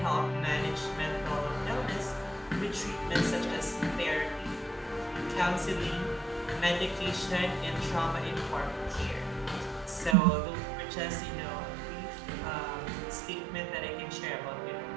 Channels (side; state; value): left; drops out; at 10.2 s